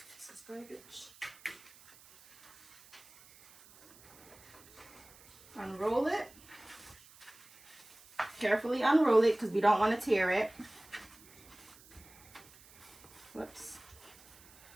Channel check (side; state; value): right; noise; hiss, 23 dB below the sound